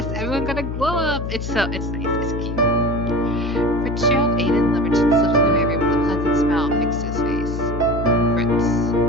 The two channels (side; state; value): left; noise; hum, 5 dB below the sound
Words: everyone got a glow up. It's nice, it's cute. Fitzgerald Aiden Liberton slipped into my room with a pleasant smile fixed to his face. Fritz.